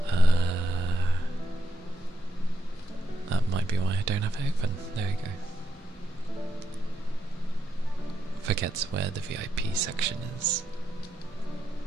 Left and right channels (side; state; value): both; normal; correlation 0.82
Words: That might be why I don't have it open. There we go. Forgets where the VIP section is.